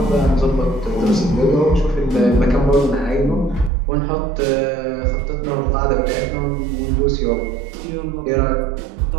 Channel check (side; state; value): left; drops out; at 3.7 s